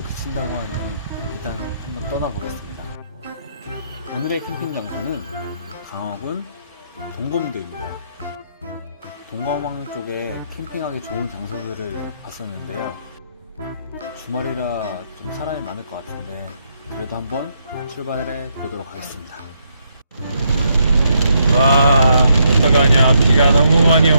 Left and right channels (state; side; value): inverted; both; correlation -0.76